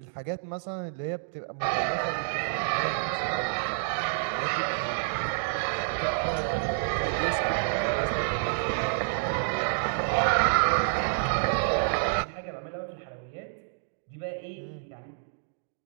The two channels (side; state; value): left; silent; digital silence